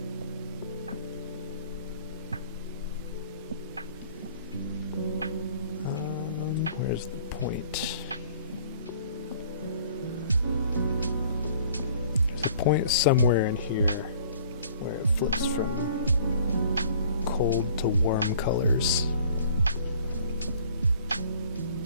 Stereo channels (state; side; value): inverted; both; correlation -0.53